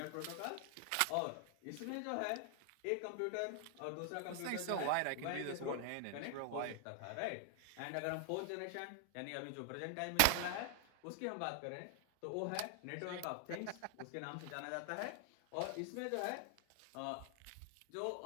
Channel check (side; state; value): both; different; correlation 0.00